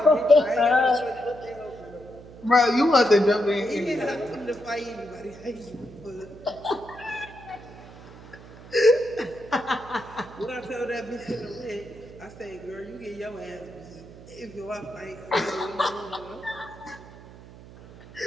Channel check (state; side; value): noise; right; hum, 18 dB below the sound